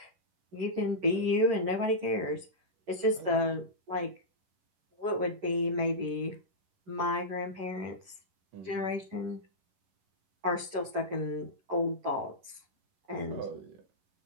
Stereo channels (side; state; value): left; late; 11 ms